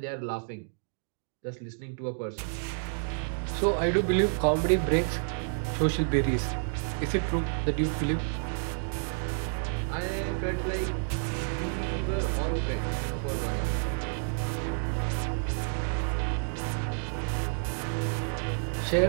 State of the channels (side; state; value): left; silent; digital silence